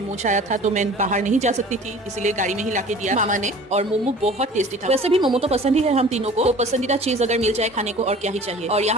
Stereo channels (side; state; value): both; normal; correlation 0.45